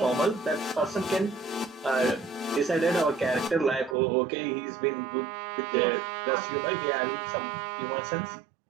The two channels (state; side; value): drops out; left; at 4.0 s